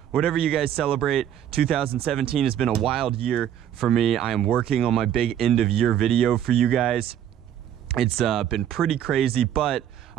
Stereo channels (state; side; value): quieter; left; 10.3 dB